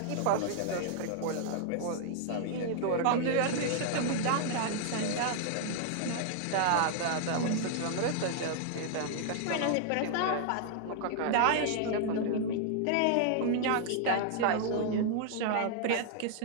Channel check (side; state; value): both; different; correlation -0.01